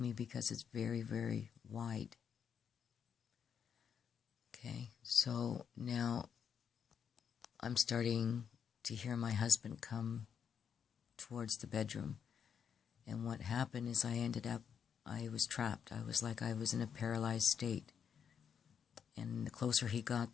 me because it's very, very wide. Okay, so now I'm starting to hear my husband come towards the bedroom. And what happened is I was trapped. I was in a paralyzed state. And the closer he got,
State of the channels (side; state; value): right; quieter; 7.5 dB